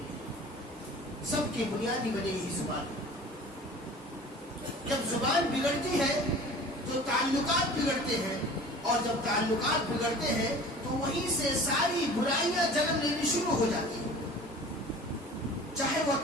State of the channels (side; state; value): both; normal; correlation 0.43